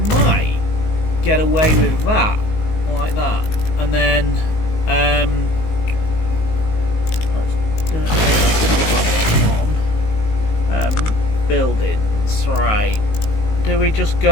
might get away with that, like that, and then let's put that one on. Buildings, right? Do we just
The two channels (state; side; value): late; right; 19 ms